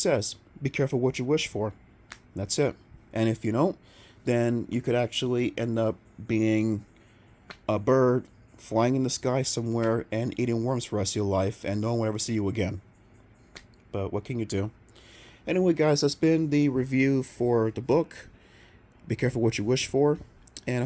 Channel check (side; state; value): both; identical; correlation 1.00